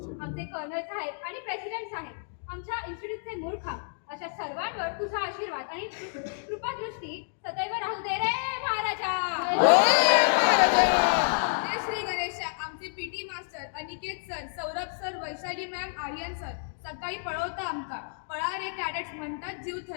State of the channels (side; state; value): right; silent; digital silence